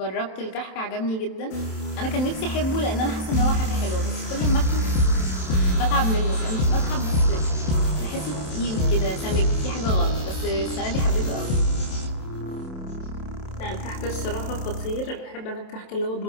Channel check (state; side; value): late; right; 27 ms